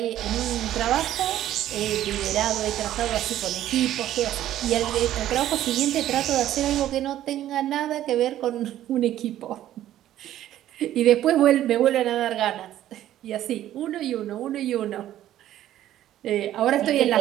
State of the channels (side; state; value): left; quieter; 12.7 dB